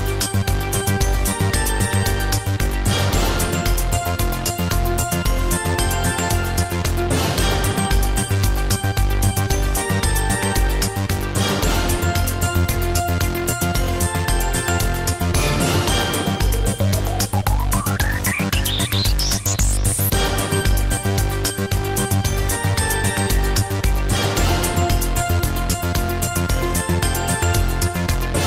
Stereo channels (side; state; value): both; identical; correlation 1.00